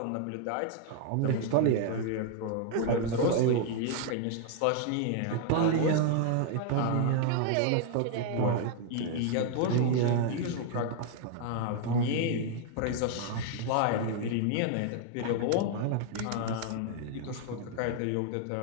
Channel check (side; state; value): both; different; correlation 0.00